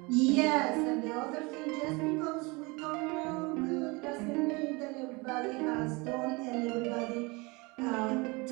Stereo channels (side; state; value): left; quieter; 26.6 dB